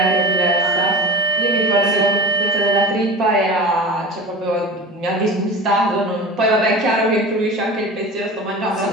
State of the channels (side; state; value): both; normal; correlation 0.32